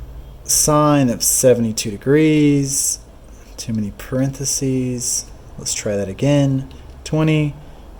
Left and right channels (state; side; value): identical; both; correlation 1.00